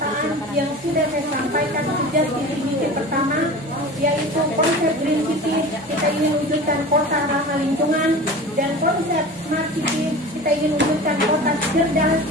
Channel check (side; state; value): both; normal; correlation 0.35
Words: yang sudah saya sampaikan sejak visi pertama, yaitu konsep Green City, kita ingin wujudkan kota ramah lingkungan, dan konsep Smart City, kita ingin wujudkan kota cerdas